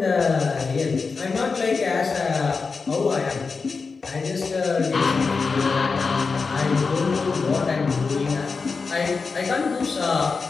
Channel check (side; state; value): right; quieter; 4.7 dB